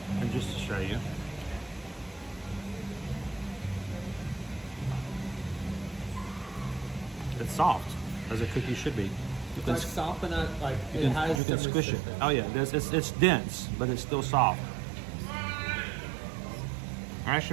And just to show you. It's soft, as a cookie should be. You It's can, like soft, but not like you it can, has you can some squish it. resistance. Oh yeah, it's dense, but it's still soft. I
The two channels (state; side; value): drops out; left; at 11.4 s